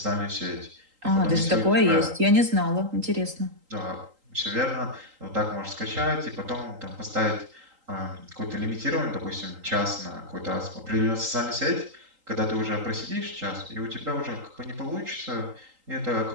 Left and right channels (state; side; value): late; left; 3.8 ms